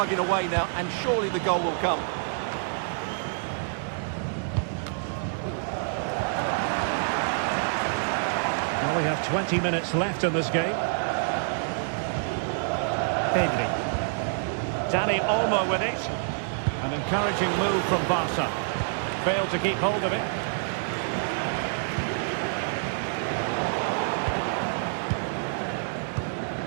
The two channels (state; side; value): silent; left; 60 dB below the other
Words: away now, and surely the goal will come. Well, we have 20 minutes left in this game. Pedri. Dani Olmo with it. An encouraging move from Barca. Failed to keep hold of it.